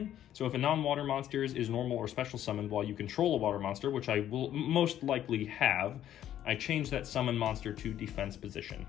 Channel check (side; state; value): right; quieter; 11.4 dB